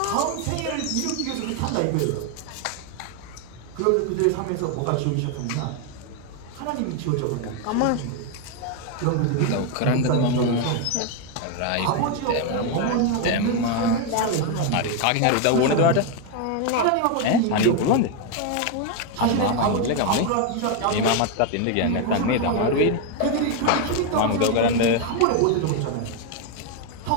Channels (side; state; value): both; different; correlation 0.01